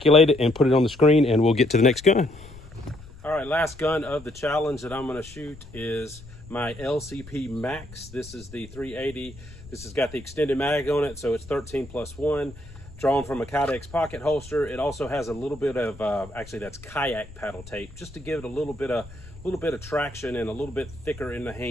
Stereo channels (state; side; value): noise; left; rumble, 18 dB below the sound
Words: it and put it on the screen and we'll get to the next gun. All right, last gun of the challenge that I'm gonna shoot is my LCP Max. This is the 380. This has got the extended mag on it, so it's 13+1. Drawn from a Kydex pocket holster. It also has a little bit of, actually that's kayak paddle tape, just to give it a little bit of traction and a little bit thicker in the